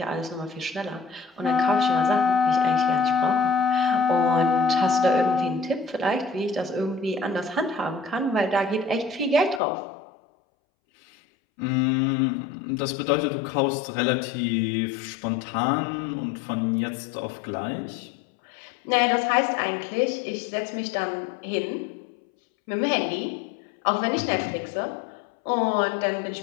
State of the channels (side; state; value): right; drops out; at 9.6 s